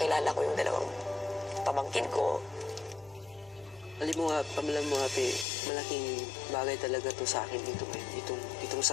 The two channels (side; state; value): right; drops out; at 5.5 s